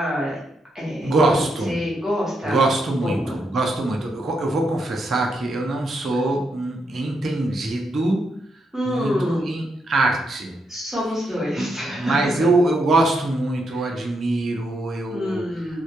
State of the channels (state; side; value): normal; both; correlation 0.80